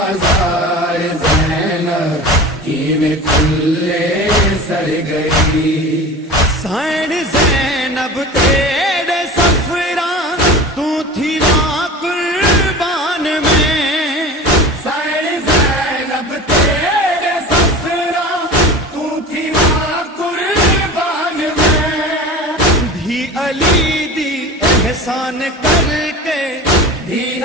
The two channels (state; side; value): normal; both; correlation 0.34